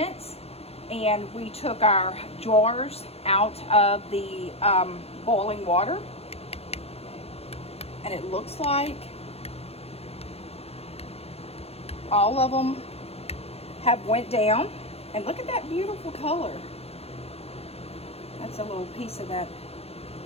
and we took our jars out of the boiling water, and it looks like all of them have went down. And look at that beautiful color. That's a little piece of that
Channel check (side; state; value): right; late; 0.29 ms